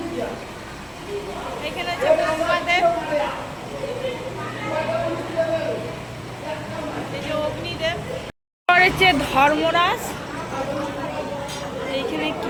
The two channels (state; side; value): identical; both; correlation 1.00